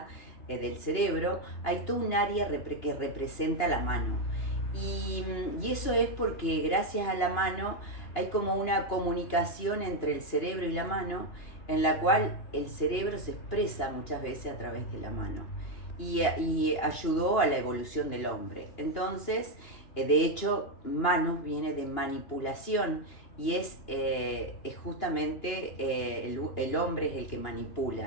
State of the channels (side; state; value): right; late; 2.9 ms